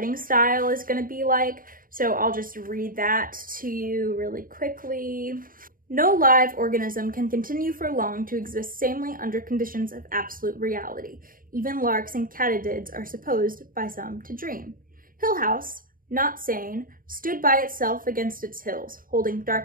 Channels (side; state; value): left; late; 0.41 ms